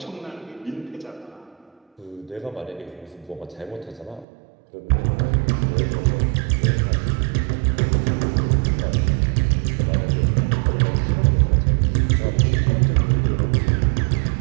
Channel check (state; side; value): drops out; left; at 4.2 s